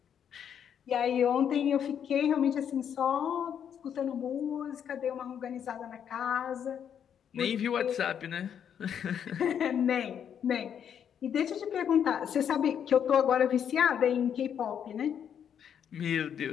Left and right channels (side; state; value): right; quieter; 8.5 dB